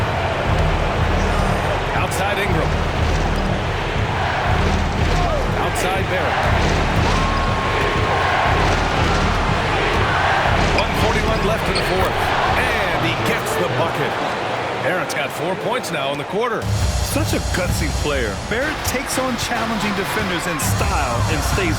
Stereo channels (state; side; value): identical; both; correlation 1.00